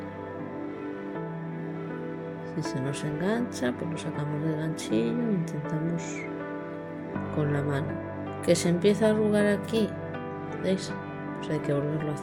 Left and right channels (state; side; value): identical; both; correlation 1.00